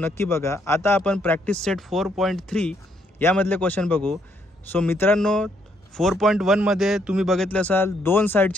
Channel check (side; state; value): both; normal; correlation 0.72